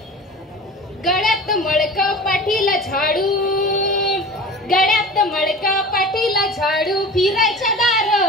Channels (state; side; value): normal; both; correlation 0.37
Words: गळ्यात मळक पाठीला झाडू, गळ्यात मळक पाठीला झाडू, फिरायच्या दार